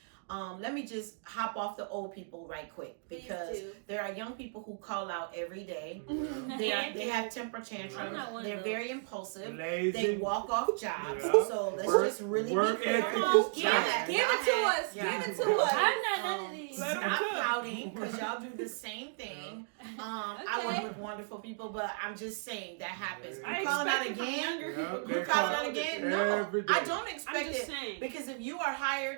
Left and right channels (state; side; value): silent; left; digital silence